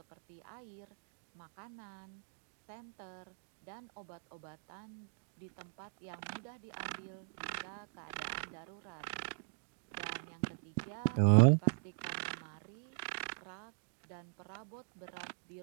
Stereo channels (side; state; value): left; silent; digital silence